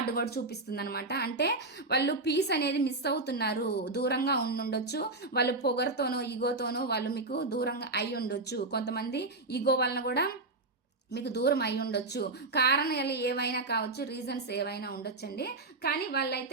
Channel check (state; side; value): quieter; left; 3.2 dB